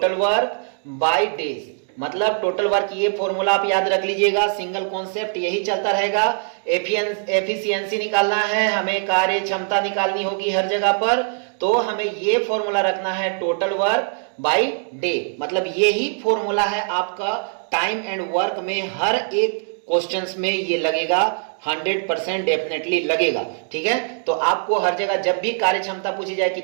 वर्क बाय डेज, मतलब टोटल वर्क, ये फॉर्मूला आप याद रख लीजिएगा, सिंगल कॉन्सेप्ट यही चलता रहेगा। एफिशिएंसी निकालना है, हमें कार्य क्षमता निकालनी होगी हर जगह पर, तो हमें ये फॉर्मूला रखना है टोटल वर्क बाय डे, मतलब यही फॉर्मूला है आपका टाइम एंड वर्क में, हर एक क्वेश्चंस में ये लगेगा, 100% डेफिनेटली लगेगा, ठीक है। तो आपको हर जगह जब भी कार्य क्षमता पूछी जाए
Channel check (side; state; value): left; silent; 64 dB below the other